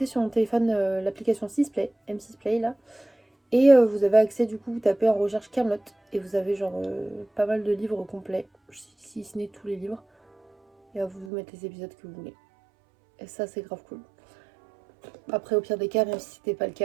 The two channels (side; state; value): left; drops out; at 11.3 s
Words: sur mon téléphone l'application 6play, M6play là. Et vous avez accès, du coup, vous tapez en recherche Camelot et vous avez genre pas mal de livres complets, si ce n'est tous les livres. Et à vous mettre les épisodes que vous voulez. Et ça, c'est grave cool. Après, au pire des cas, même si c'était pas le